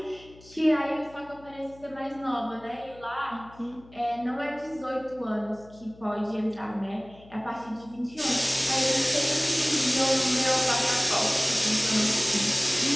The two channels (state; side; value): noise; left; hum, 23 dB below the sound